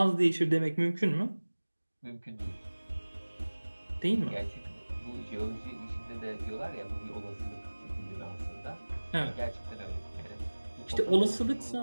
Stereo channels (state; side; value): inverted; both; correlation -1.00